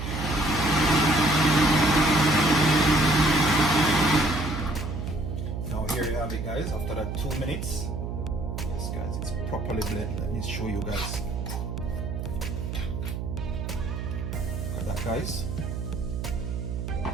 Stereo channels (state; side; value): noise; right; hum, 4 dB below the sound